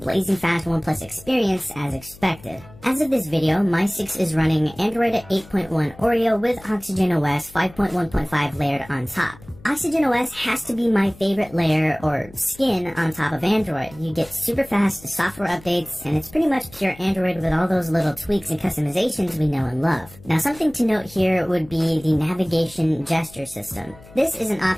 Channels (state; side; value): noise; left; hum, 22 dB below the sound